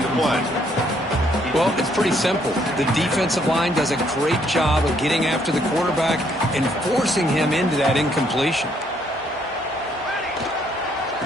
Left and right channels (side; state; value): both; normal; correlation 0.69